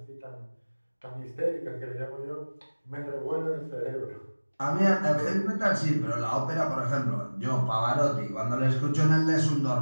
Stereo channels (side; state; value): both; inverted; correlation -1.00